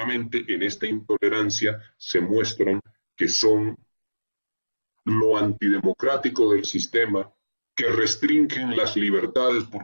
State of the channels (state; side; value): inverted; both; correlation -1.00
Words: en esta intolerancia se muestran que son lo antidemocrático del sistema, que restringen las libertades